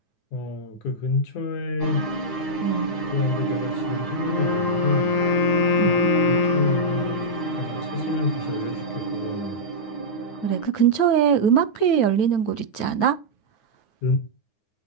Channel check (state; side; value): late; right; 9.5 ms